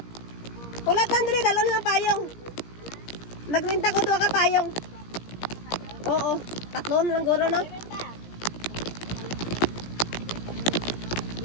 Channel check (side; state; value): right; late; 17 ms